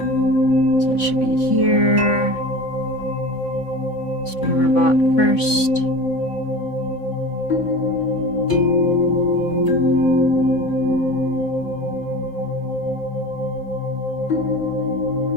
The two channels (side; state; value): right; late; 3.6 ms